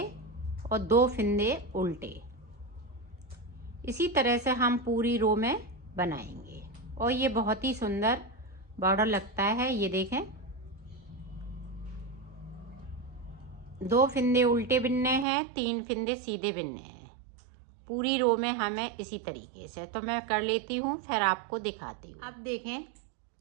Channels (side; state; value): left; drops out; at 15.2 s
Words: और 2 फिंदे उल्टे। इसी तरह से हम पूरी रो में बनाएंगे और ये बहुत ही सुंदर बॉर्डर लगता है। ये देखें, 2 फिंदे उल्टे बिनने हैं, 3 फिंदे सीधे बिनने हैं। पूरी रो में हमें इसी तरीके से, तो मैं कर लेती हूँ फिर आपको दिखाती हूँ। अब देखें,